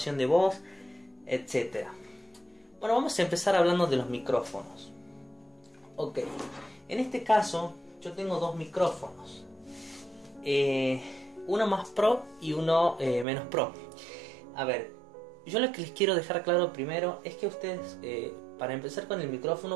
de voz? Etcétera. Bueno, vamos a empezar hablando de los micrófonos. Ok, en este caso yo tengo dos micrófonos, uno más pro y uno menos pro. A ver, yo lo que les quiero dejar claro primero es que ustedes, para empezar con el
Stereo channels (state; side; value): drops out; left; at 13.2 s